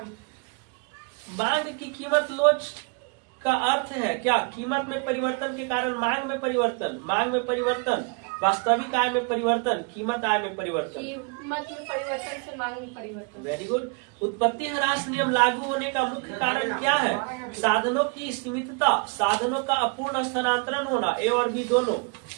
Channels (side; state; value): left; quieter; 33.6 dB